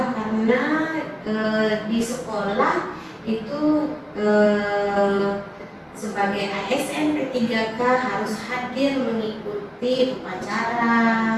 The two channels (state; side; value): identical; both; correlation 1.00